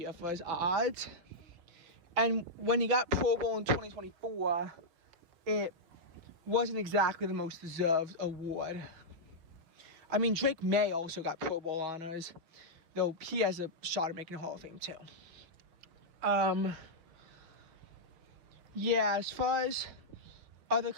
for his odds. And when he got Pro Bowl in 2024, it wasn't exactly the most deserved award. I mean, Drake May also got Pro Bowl honors, though he has a shot at making the Hall of Fame too. Yeah, as far as other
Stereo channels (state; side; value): late; left; 6.1 ms